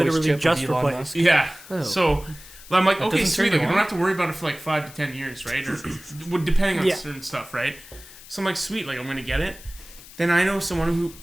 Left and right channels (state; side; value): noise; left; hiss, 19 dB below the sound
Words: chip just of Elon replaced. Yeah. Oh. So I'm like, That okay, doesn't sweet. turn Like, I you don't on? have to worry about it for like 5 to 10 years, right? Or depending on Yeah. certain stuff, right? So I'm like, sweet. Like, I'm gonna get it. Then I know someone